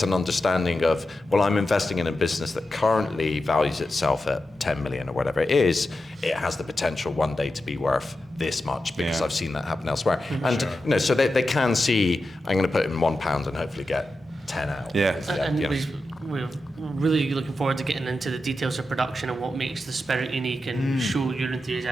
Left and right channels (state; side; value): normal; both; correlation 0.90